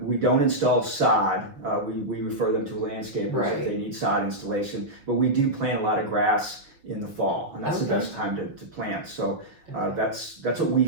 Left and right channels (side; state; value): left; late; 6.2 ms